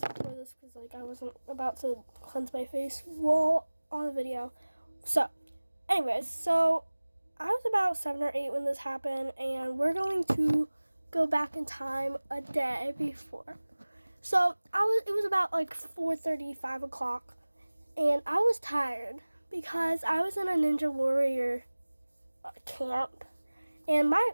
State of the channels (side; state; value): both; inverted; correlation -1.00